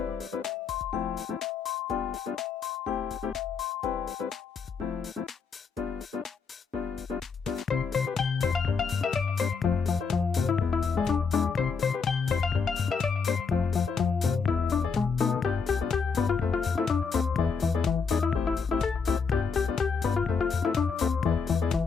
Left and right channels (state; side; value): quieter; right; 5.4 dB